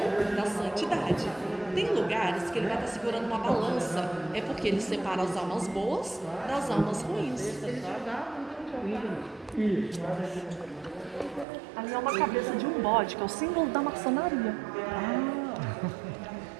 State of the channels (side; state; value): left; drops out; at 11.5 s